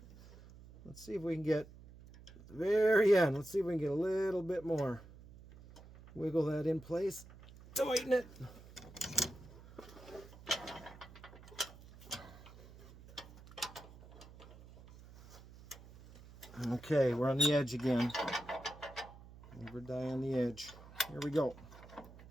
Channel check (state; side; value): noise; right; hum, 19 dB below the sound